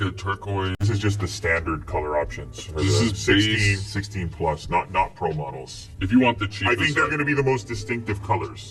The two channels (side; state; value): both; identical; correlation 1.00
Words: a turquoise. This is just the standard color options. For This the is 16, base. 16 plus, not pro models. If you want the cheapest, I think they're going to be the most distinctive